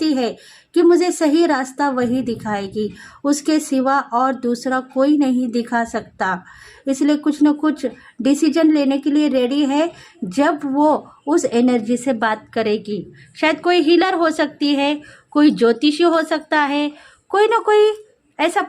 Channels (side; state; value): both; identical; correlation 1.00